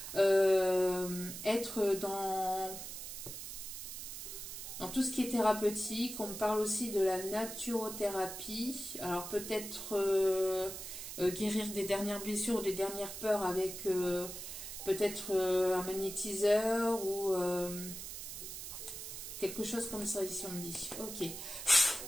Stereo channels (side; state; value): right; noise; hiss, 8 dB below the sound